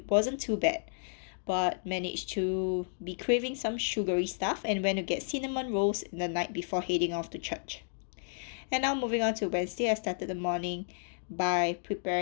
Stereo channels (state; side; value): silent; right; digital silence